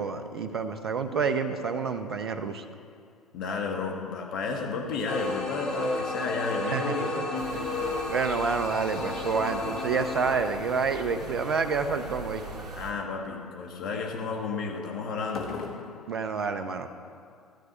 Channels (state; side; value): normal; both; correlation 0.42